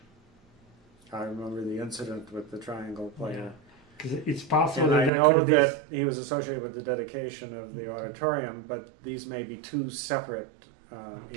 I remember the incident with the triangle player. Because it's possible and I know that he was associated with the dedication of the auditorium, but these may be two separate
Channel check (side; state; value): left; drops out; at 5.1 s